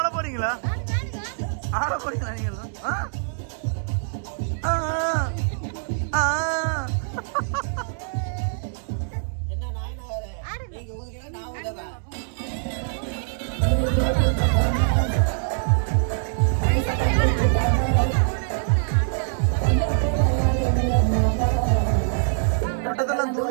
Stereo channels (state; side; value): silent; left; digital silence